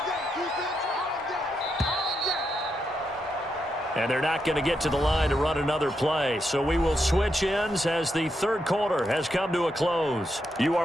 And they're not going to get to the line to run another play. So we will switch ends as the third quarter has come to a close. You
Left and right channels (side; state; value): both; normal; correlation 0.82